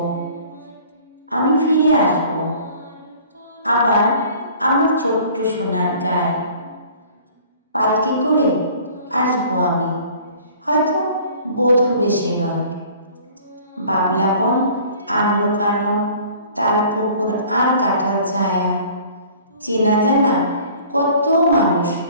আমি ফিরে আসব আবার আমার ছোট্ট সোনার গায়ে। পালকি করে আসবো আমি, হয়তো বধূ বেশে নয়। বাবলা বন, আম্রকানন, তাল পুকুর আর কাঁঠাল ছায়া, চেনা জানা কত মানুষ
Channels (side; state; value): both; inverted; correlation -0.50